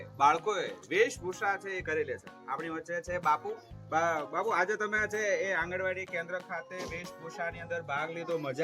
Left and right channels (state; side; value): identical; both; correlation 1.00